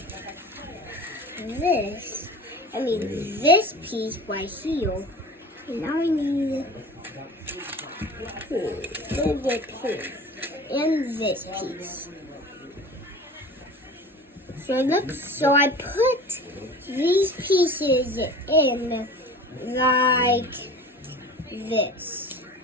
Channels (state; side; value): normal; both; correlation 0.39